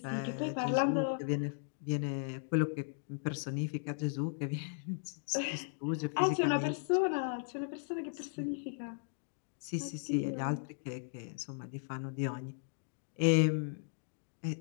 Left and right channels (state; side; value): silent; right; digital silence